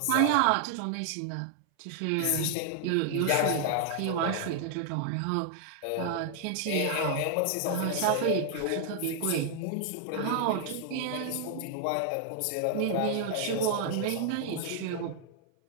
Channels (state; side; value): different; both; correlation 0.00